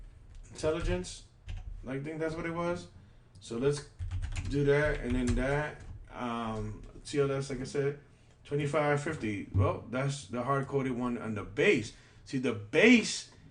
intelligence. I think that's what it was. So let's do that, and then that. TLS, like I said, 2550. Well, that's the hard coded one on the base. See, the base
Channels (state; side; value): identical; both; correlation 1.00